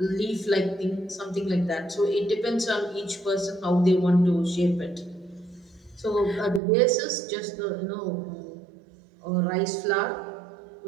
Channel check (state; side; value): drops out; left; at 6.6 s